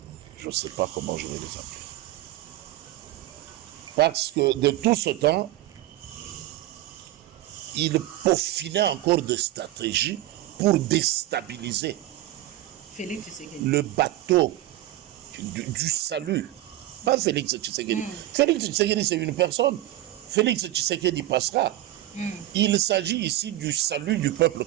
ne sais pas comment je vais les appeler. Parce que de tout ce temps, ils peaufinaient encore des stratégies pour déstabiliser le bateau du salut. Pas Félix Tshisekedi. Félix Tshisekedi, c'est une personne. Félix Tshisekedi passera. Il s'agit ici du salut du peuple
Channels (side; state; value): left; quieter; 15.2 dB